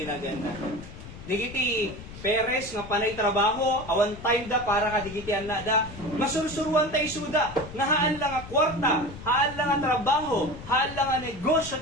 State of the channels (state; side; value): noise; left; rumble, 14 dB below the sound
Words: na ganda. Digiti peres nga panay trabaho, awan time da para ka digiti anak da, masursuruan tayo suda, nga haan lang nga kwarta, haan lang nga trabaho, haan lang nga negosyo